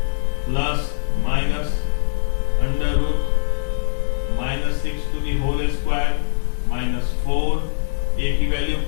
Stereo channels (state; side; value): silent; right; 65 dB below the other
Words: plus minus under root -6 to the whole square -4। a की वैल्यू